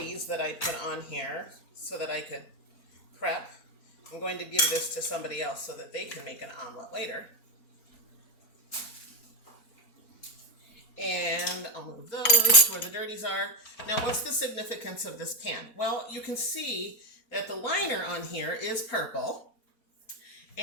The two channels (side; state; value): right; late; 4.2 ms